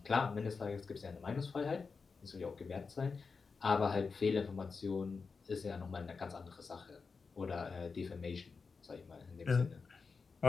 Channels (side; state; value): right; quieter; 4.9 dB